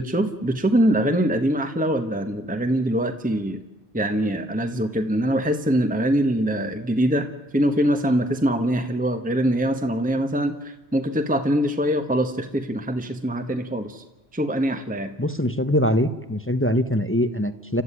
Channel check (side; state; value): both; normal; correlation 0.63